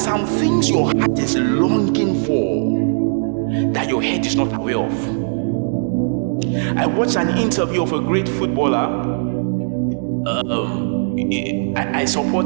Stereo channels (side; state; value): left; silent; digital silence